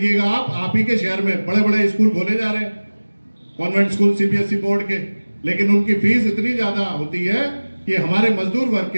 आप ही के शहर में बड़े बड़े स्कूल खोले जा रहे हैं, कॉन्वेंट स्कूल सीबीएसई बोर्ड के, लेकिन उनकी फीस इतनी ज्यादा होती है कि हमारे मजदूर वर्ग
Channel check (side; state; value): both; inverted; correlation -1.00